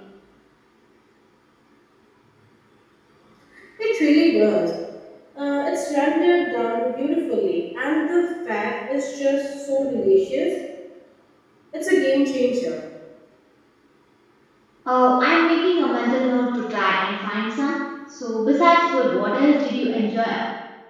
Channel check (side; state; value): both; identical; correlation 1.00